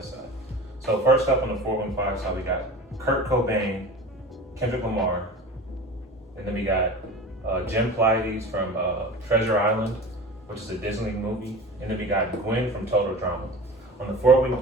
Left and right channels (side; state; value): both; normal; correlation 0.35